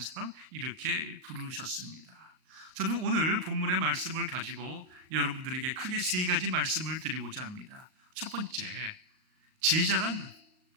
이렇게 부르셨습니다. 저는 오늘 본문의 말씀을 가지고 여러분들에게 크게 세 가지 말씀을 드리고자 합니다. 첫 번째, 제자란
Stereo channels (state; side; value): late; left; 38 ms